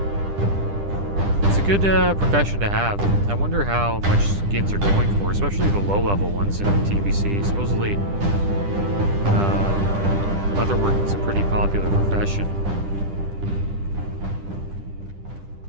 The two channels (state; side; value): late; left; 10 ms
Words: It's a good profession to have. I wonder how much skins are going for, especially the low-level ones in TBC. Supposedly, leatherworking is a pretty popular profession.